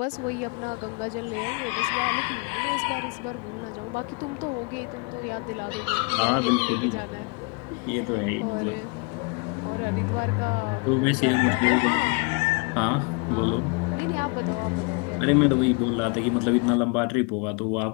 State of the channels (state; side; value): quieter; right; 32.4 dB